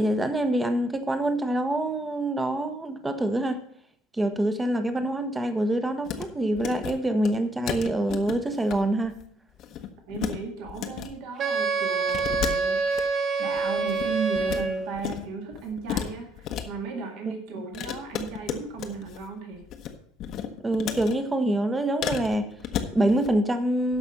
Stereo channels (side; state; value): both; normal; correlation 0.74